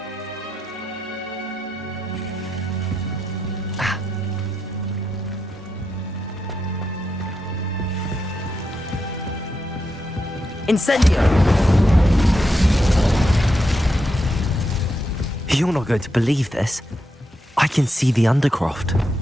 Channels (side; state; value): both; normal; correlation 0.84